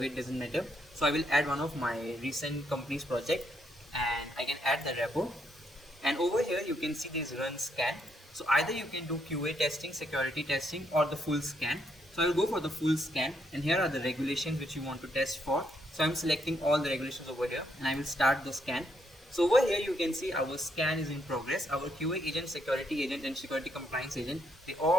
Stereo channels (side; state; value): both; normal; correlation 0.75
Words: doesn't matter. So I will add one of my recent company's project and I can add the repo. And over here you can see this run scan. So either you can do QA testing, security testing, or the full scan. So I will go for the full scan, and here are the regulations which you want to test for. So I'm selecting all the regulations over here and I will start the scan. So over here you can see our scan is in progress. Our QA agent, security agent and security compliance agent, they